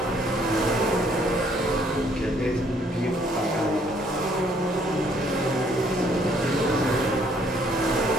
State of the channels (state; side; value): normal; both; correlation 0.65